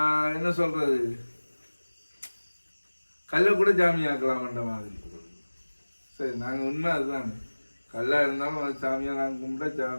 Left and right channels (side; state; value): both; inverted; correlation -1.00